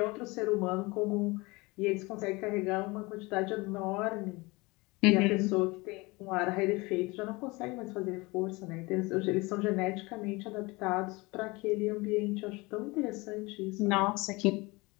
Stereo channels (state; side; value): quieter; right; 24.2 dB